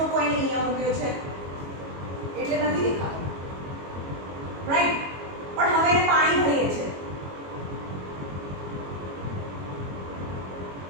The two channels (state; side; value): late; left; 22 ms